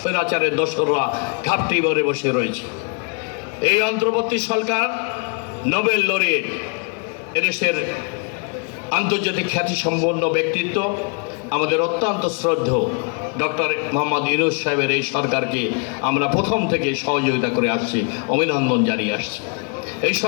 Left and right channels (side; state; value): right; quieter; 37.4 dB